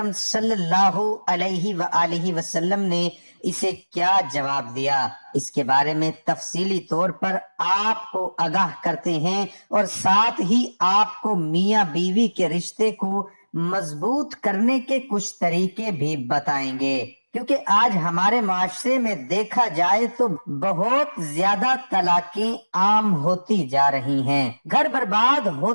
صلی اللہ علیہ وآلہ وسلم نے اسے کیا جواب دیا؟ اس کے بارے میں تفصیلی طور پر آپ کو آگاہ کرتے ہیں اور ساتھ ہی آپ کو میاں بیوی کے رشتے کو مضبوط کرنے کے کچھ طریقے بھی بتائیں گے، کیونکہ آج ہمارے معاشرے میں دیکھا جائے تو بہت زیادہ طلاقیں عام ہوتی جا رہی ہیں، گھر برباد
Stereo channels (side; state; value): both; inverted; correlation -1.00